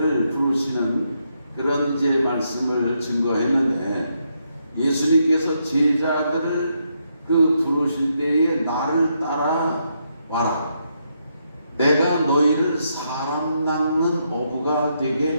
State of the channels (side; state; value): both; inverted; correlation -0.79